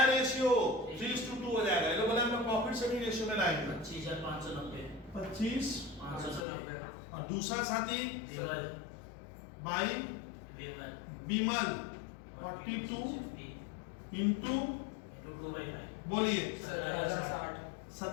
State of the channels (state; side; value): drops out; right; at 6.5 s